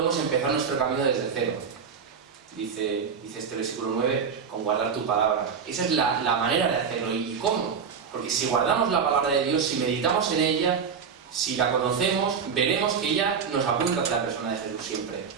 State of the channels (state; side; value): quieter; left; 6.4 dB